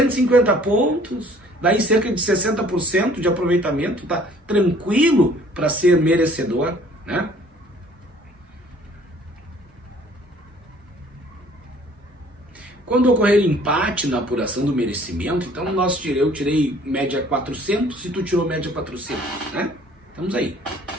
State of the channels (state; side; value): normal; both; correlation 0.55